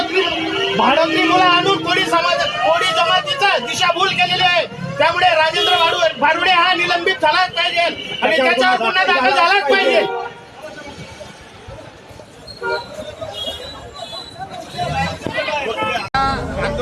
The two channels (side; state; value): both; identical; correlation 1.00